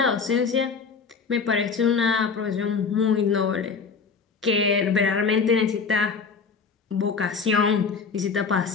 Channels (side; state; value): right; quieter; 5.3 dB